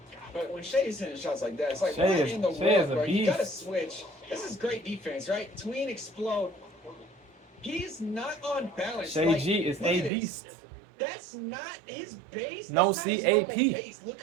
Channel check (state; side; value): drops out; left; at 10.1 s